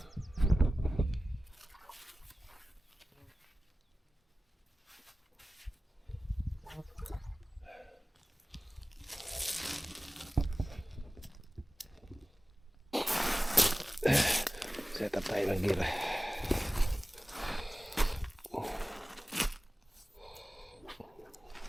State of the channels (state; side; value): normal; both; correlation 0.96